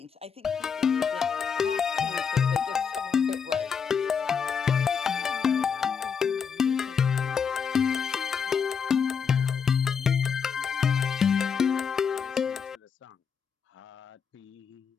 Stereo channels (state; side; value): quieter; right; 6.6 dB